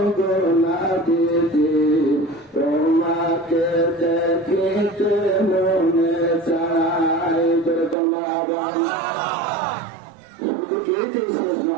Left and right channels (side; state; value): left; drops out; at 8.0 s